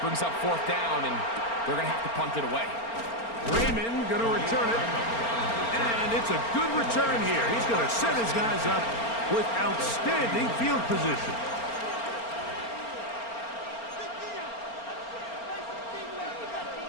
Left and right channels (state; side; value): late; right; 4.4 ms